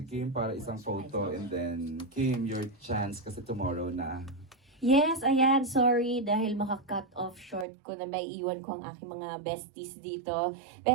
Kim para isang photo and then, Kim, your chance kasi tomorrow na. Yes, ayan, sorry dahil maka-cut off short ko na may iwan ko ang aking mga besties dito.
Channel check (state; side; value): drops out; left; at 7.7 s